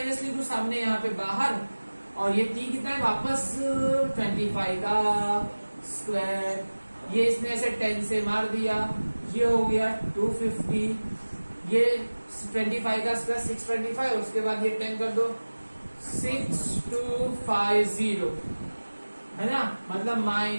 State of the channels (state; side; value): inverted; both; correlation -1.00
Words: लिख दू सामने यहाँ पे बाहर, और ये t कितना है? वापस 25 का स्क्वायर। ये इसने ऐसे 10 से मार दिया, ये हो गया 250। ये 25 का स्क्वायर 625, और उसके बाद ये 10 कर दो 6250, है ना, मतलब